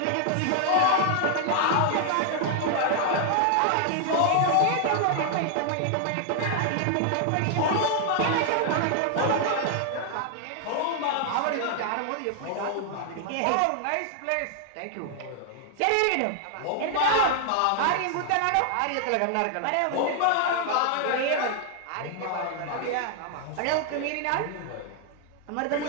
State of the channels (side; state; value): both; different; correlation 0.00